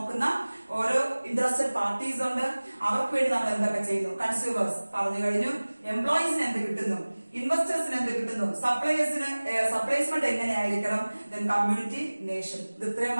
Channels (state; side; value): inverted; both; correlation -1.00